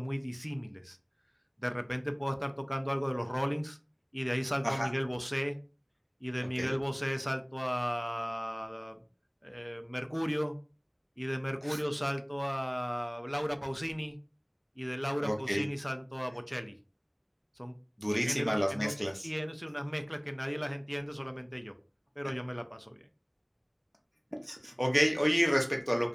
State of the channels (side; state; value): both; identical; correlation 1.00